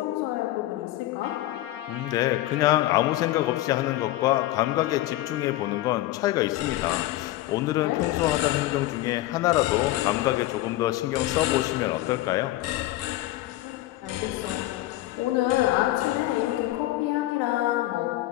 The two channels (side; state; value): right; quieter; 16.2 dB